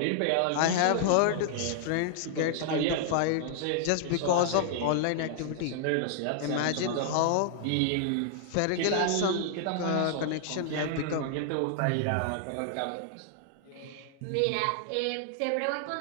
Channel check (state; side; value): different; both; correlation -0.01